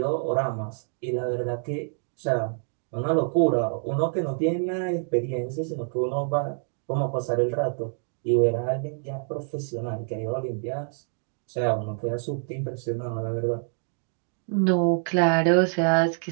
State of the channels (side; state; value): left; silent; 60 dB below the other